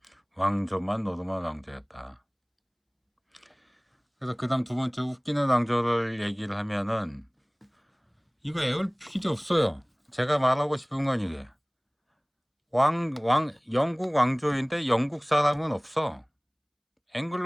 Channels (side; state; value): both; identical; correlation 1.00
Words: 왕조만 노르만 왕조였다. 그래서 그 다음 두 번째 웃기는 왕조를 얘기를 하면은 이거 애울 필요 없어요. 제가 말하고 싶은 건 이게 영국 왕조인데 영국 사람은 없어.